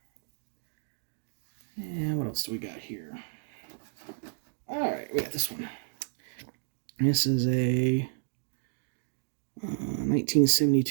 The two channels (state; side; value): silent; left; digital silence